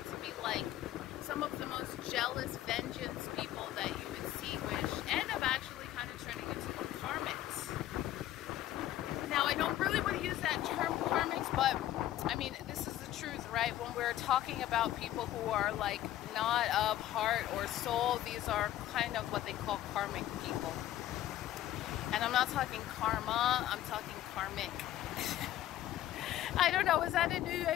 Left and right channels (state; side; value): quieter; right; 13.4 dB